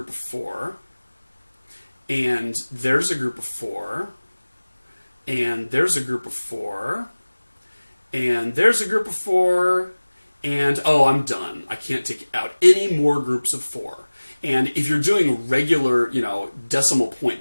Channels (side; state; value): both; inverted; correlation -1.00